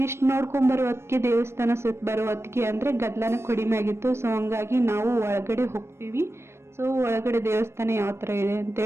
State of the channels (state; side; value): late; left; 0.13 ms